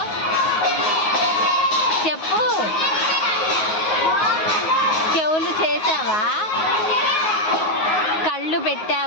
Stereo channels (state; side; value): late; right; 9.4 ms